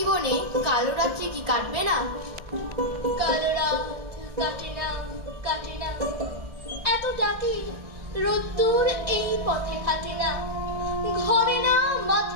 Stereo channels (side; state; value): left; late; 1.6 ms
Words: কালো রাত্রি কি কাটবে না? কালো রাত কাটে না, কাটে না, এত ডাকি রোদ্দুর এই পথে কাটে না, ঘরে না,